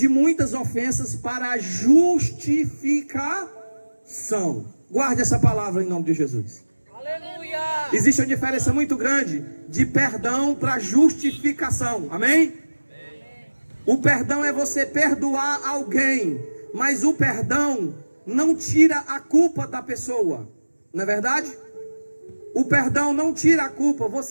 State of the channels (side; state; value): both; inverted; correlation -1.00